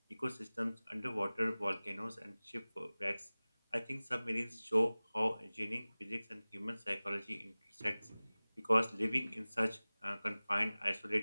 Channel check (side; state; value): both; inverted; correlation -0.99